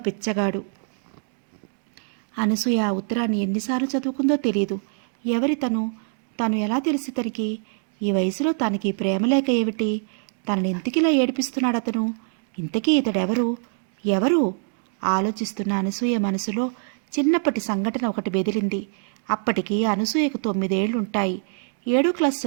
పిచ్చగాడు. అనసూయ ఆ ఉత్తరాన్ని ఎన్నిసార్లు చదువుకుందో తెలియదు. ఎవరి తను ఎలా తెలిసి తనకి? ఈ వయసులో తనకి ప్రేమ లేక ఏమిటి? తనని ఎందుకిలా ఏడిపిస్తున్నాడు అతను? ఇంతకీ ఇతడెవరు? ఎవరు? ఆలోచిస్తున్న అనసూయ మనసులో చిన్నప్పటి సంఘటన ఒకటి బెదిరింది. అప్పటికి అనసూయకు 9 ఏళ్లుంటాయి. 7వ క్లాస్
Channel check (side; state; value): left; silent; 58 dB below the other